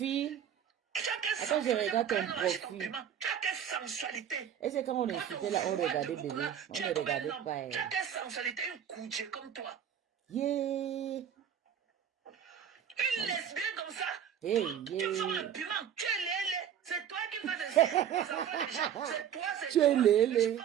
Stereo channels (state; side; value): quieter; left; 9.0 dB